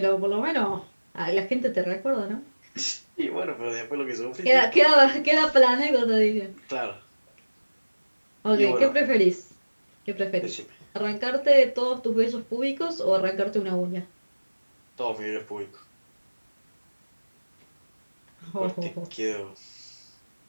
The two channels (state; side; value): inverted; both; correlation -1.00